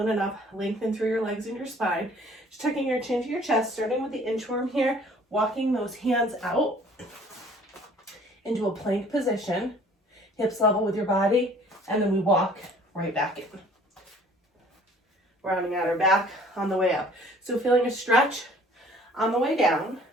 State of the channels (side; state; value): both; normal; correlation 0.54